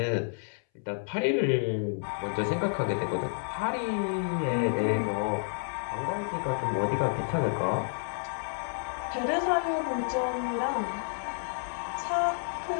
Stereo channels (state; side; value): silent; right; 58 dB below the other